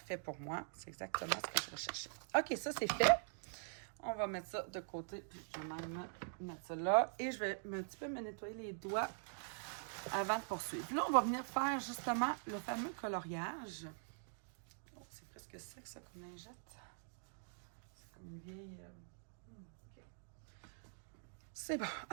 pour moi. C'est exactement ce que je recherchais. OK, ça, c'est fait. On va mettre ça de côté, puis je vais même mettre ça là. Et je vais un petit peu me nettoyer les doigts avant de poursuivre. Là, on va venir faire justement le fameux coloriage. Oh, c'est presque sec, ça, comme lingette. C'est comme une vieille... OK. C'est bon.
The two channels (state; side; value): silent; left; digital silence